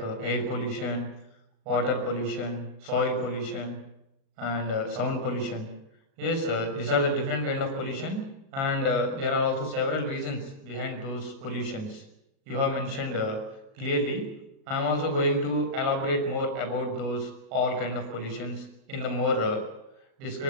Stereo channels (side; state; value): left; late; 37 ms